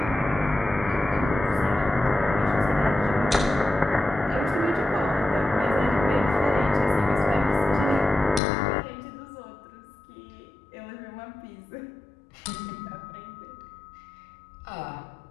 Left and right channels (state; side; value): drops out; right; at 8.4 s